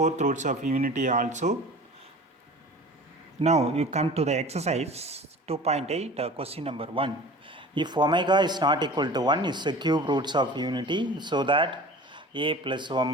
roots of unity also. Now you come to the exercise 2.8, question number 1. If omega is not equal to 1 is the cube roots of unity, so that a plus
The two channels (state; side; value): normal; both; correlation 0.40